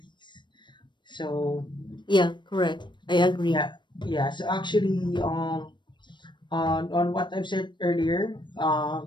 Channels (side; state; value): right; late; 0.22 ms